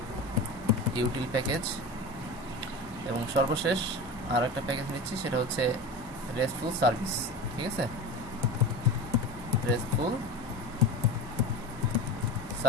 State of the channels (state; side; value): normal; both; correlation 0.28